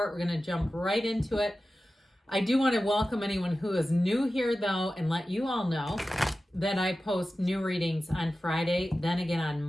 We're going to jump right into it. I do want to welcome anyone who is new here though and let you all know that I post new readings on Friday, then again on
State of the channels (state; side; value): normal; both; correlation 0.94